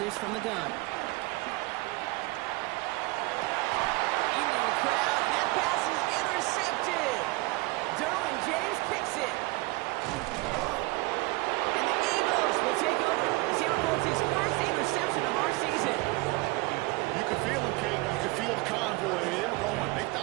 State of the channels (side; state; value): left; quieter; 23.0 dB